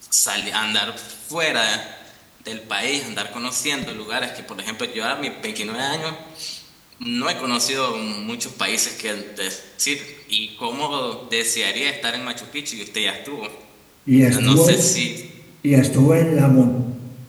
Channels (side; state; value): both; identical; correlation 1.00